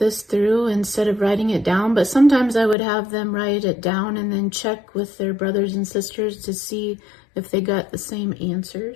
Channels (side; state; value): right; drops out; at 2.8 s